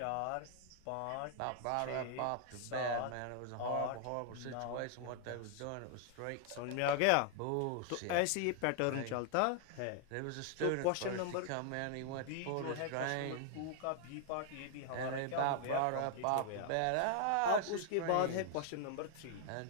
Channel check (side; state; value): both; different; correlation 0.00